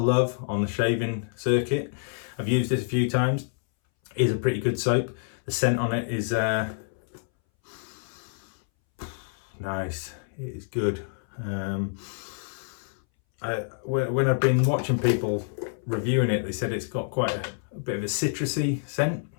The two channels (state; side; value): silent; right; 60 dB below the other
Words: on the shaving circuit. I've used this a few times. It is a pretty good soap. The scent on it is nice. It is good. When I've been watching people reviewing it, they said it's got quite a bit of a citrusy scent,